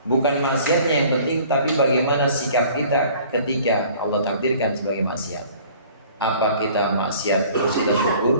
Bukan maksiatnya yang penting, tapi bagaimana sikap kita ketika Allah takdirkan sebagai maksiat. Apa kita maksiat terus kita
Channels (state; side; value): inverted; both; correlation -0.51